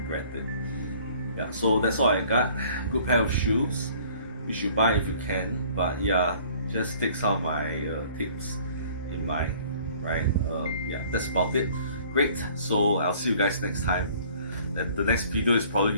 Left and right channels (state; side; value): inverted; both; correlation -0.54